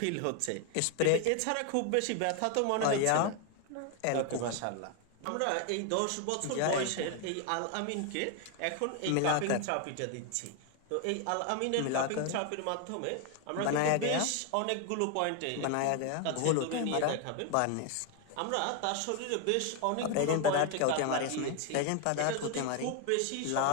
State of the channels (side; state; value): both; different; correlation 0.01